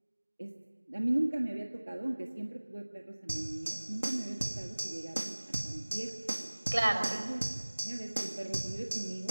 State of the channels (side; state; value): both; inverted; correlation -1.00